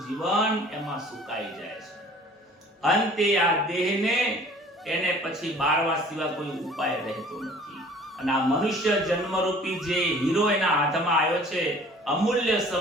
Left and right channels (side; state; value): both; normal; correlation 0.50